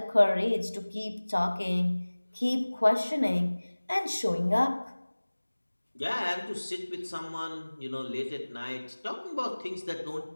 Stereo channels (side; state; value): both; inverted; correlation -1.00